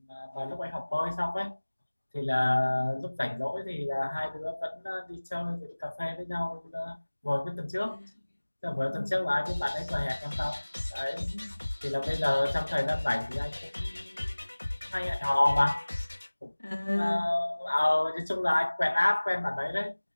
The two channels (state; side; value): inverted; both; correlation -1.00